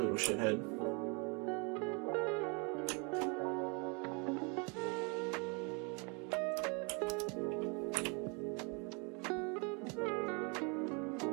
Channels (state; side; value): quieter; left; 32.9 dB